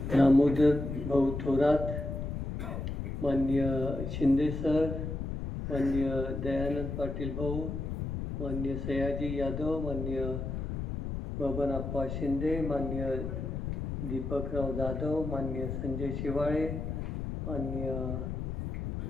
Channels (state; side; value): noise; left; rumble, 4 dB below the sound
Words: दामोदर भाऊ थोरात, माननीय शिंदे सर, माननीय दयानंद पाटील भाऊ, माननीय सयाजी यादव, माननीय बबनप्पा शिंदे, माननीय दीपकराव जाधव, माननीय संजय शिवाळे, माननीय